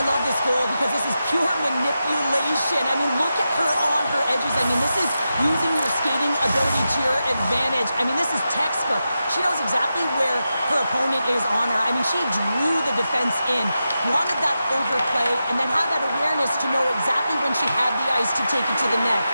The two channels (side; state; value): both; inverted; correlation -0.90